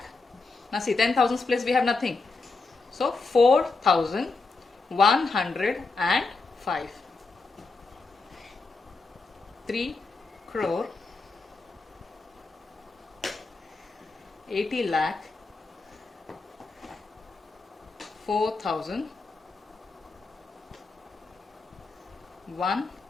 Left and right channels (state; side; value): quieter; right; 3.9 dB